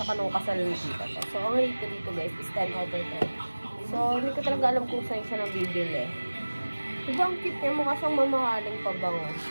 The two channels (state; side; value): inverted; both; correlation -1.00